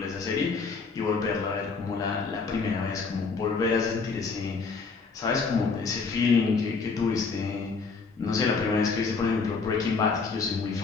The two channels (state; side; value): quieter; right; 4.7 dB